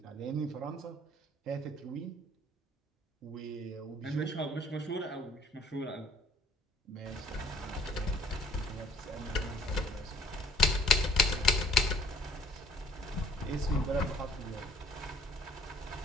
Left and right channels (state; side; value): normal; both; correlation 0.57